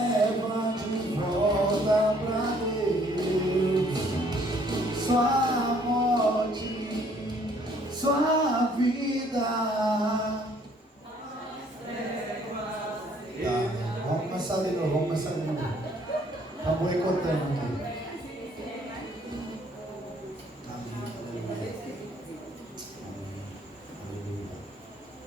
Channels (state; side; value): normal; both; correlation 0.62